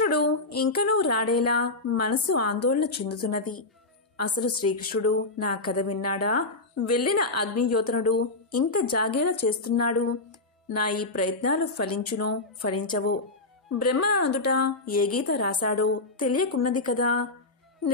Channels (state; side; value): quieter; right; 3.2 dB